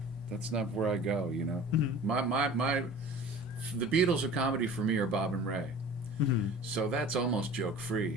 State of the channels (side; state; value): both; normal; correlation 0.42